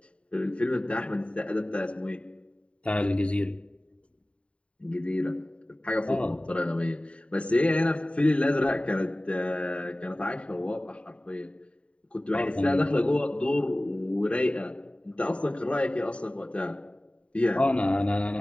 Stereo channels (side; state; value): right; late; 0.061 ms